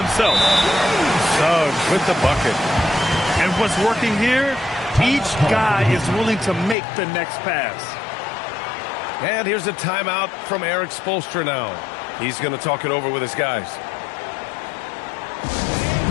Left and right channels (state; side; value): drops out; right; at 6.8 s